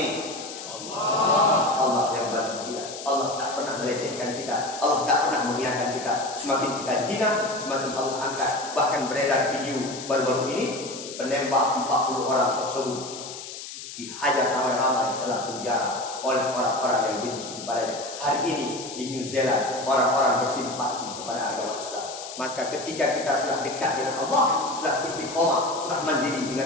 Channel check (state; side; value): noise; left; hiss, 11 dB below the sound